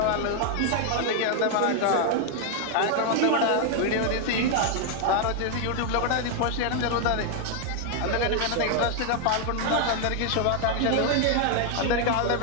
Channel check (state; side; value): different; both; correlation 0.00